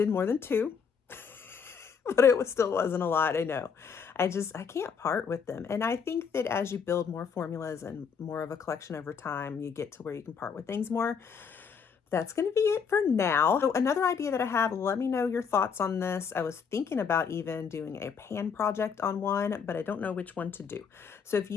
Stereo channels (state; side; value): quieter; right; 6.4 dB